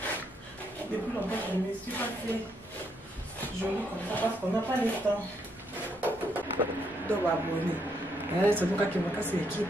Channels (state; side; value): normal; both; correlation 0.75